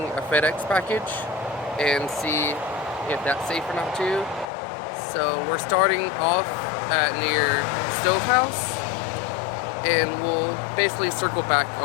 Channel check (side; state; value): right; drops out; at 4.5 s